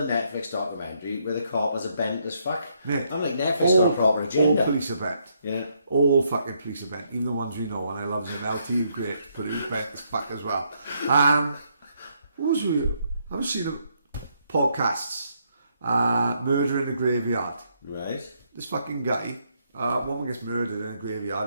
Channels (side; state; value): both; inverted; correlation -0.74